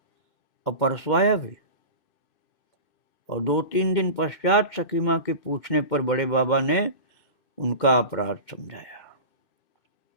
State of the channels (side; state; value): right; late; 2.6 ms